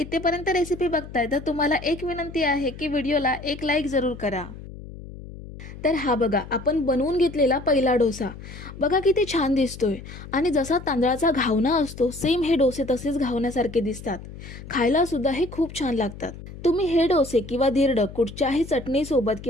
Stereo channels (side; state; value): left; noise; hum, 14 dB below the sound